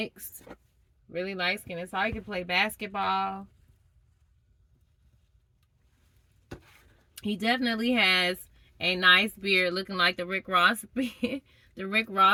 Really light skinned. So he could play basketball. He definitely has a nice beard, looking like the Rick Ross beard. The Rick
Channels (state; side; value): identical; both; correlation 1.00